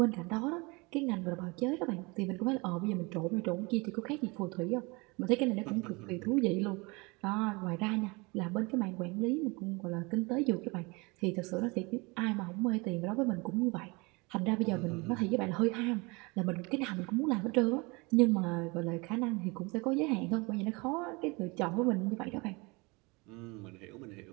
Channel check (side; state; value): left; quieter; 26.8 dB